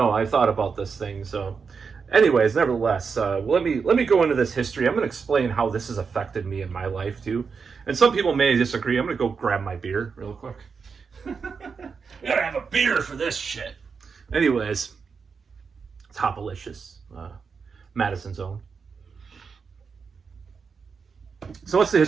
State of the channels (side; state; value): left; quieter; 5.5 dB